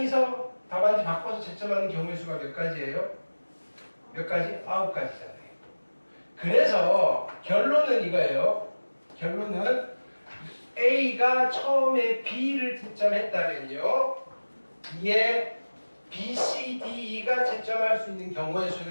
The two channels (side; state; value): both; inverted; correlation -1.00